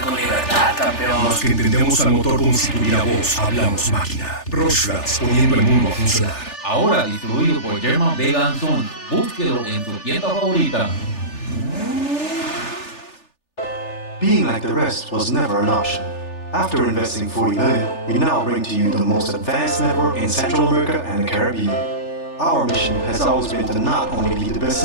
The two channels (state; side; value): late; right; 3.4 ms